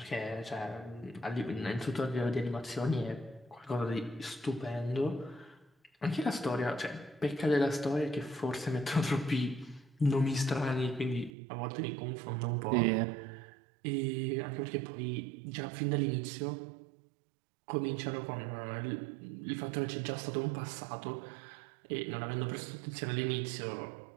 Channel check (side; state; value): left; drops out; at 11.3 s